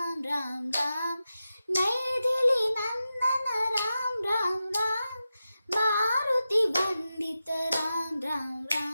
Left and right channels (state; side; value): inverted; both; correlation -0.92